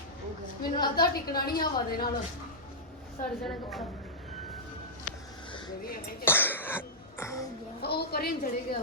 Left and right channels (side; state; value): both; normal; correlation -0.11